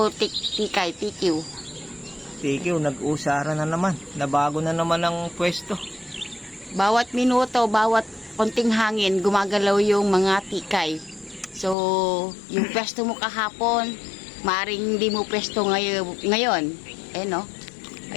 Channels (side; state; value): right; drops out; at 11.8 s